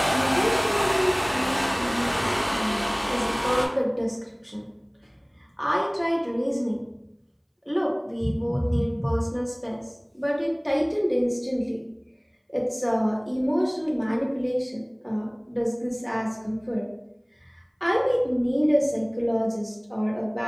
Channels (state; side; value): identical; both; correlation 1.00